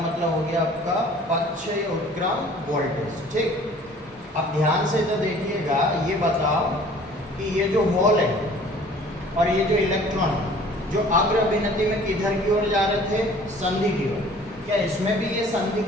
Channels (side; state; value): both; normal; correlation 0.51